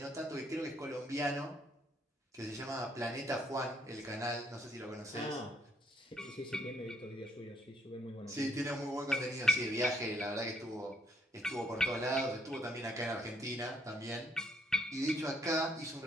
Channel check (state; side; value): normal; both; correlation 0.69